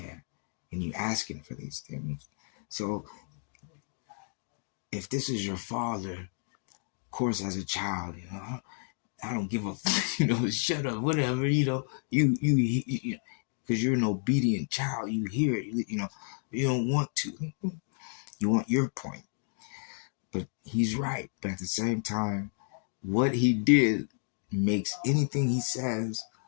And you asking for these things. So if this is your father, of course, as a child, I don't give a, shut up, whatever, you, because you're an obedient child. You hear it, you don't want to. You want your point. But he's right. But at the same time, what he did makes anything he says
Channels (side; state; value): right; silent; 57 dB below the other